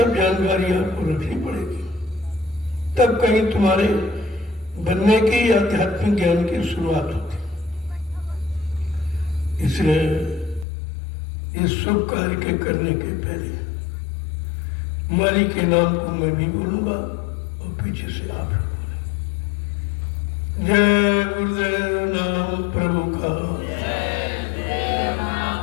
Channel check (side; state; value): right; drops out; at 10.7 s